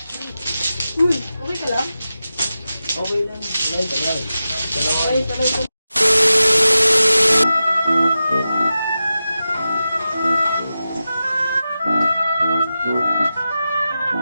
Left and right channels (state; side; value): inverted; both; correlation -0.92